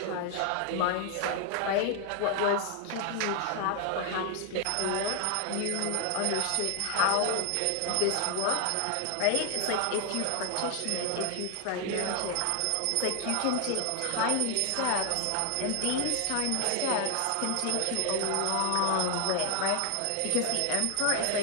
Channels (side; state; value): both; different; correlation 0.00